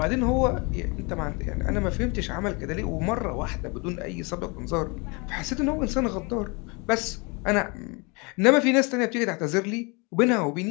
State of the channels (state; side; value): quieter; right; 29.6 dB